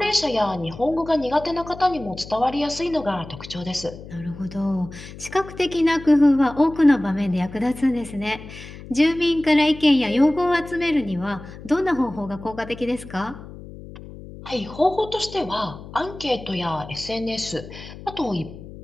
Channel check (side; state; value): left; noise; hum, 15 dB below the sound